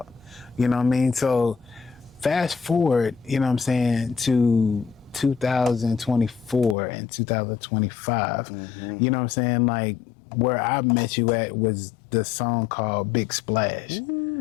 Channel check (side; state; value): right; drops out; at 6.8 s